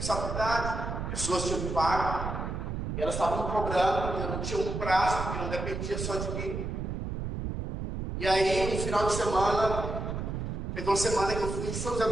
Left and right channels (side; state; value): right; noise; rumble, 4 dB below the sound